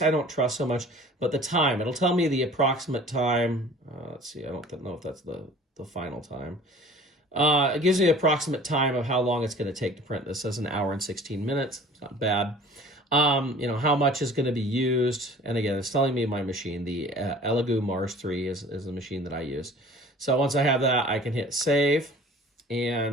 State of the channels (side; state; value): both; normal; correlation 0.47